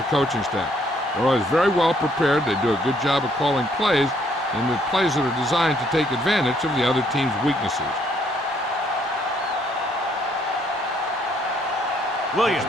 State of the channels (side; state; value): both; normal; correlation 0.67